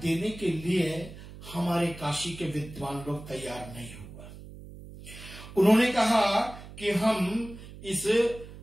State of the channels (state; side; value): noise; right; hum, 15 dB below the sound